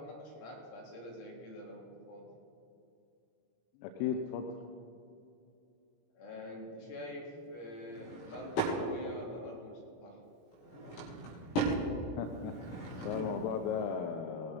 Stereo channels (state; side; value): late; right; 17 ms